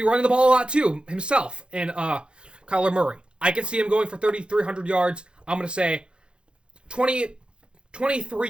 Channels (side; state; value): left; late; 0.054 ms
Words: be running the ball a lot too, himself, and Kyler Murray. I can see him going for 3,300 yards. I'm going to say